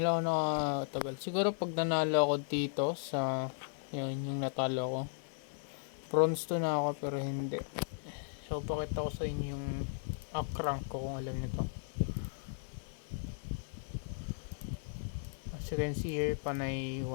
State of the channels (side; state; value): right; silent; 54 dB below the other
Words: lang ako nakatagal. Siguro pag nanalo ako dito sa, yun, yung natalo ko. Bronze 2 na ako pero hindi. So, pakita ko sa inyo yung up rank ko kung alam nito. As you can see here, panay